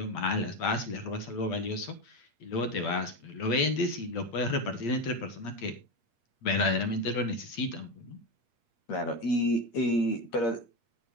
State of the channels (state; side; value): late; right; 8.5 ms